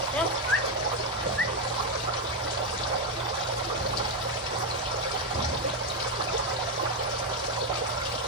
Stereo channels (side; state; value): both; normal; correlation 0.06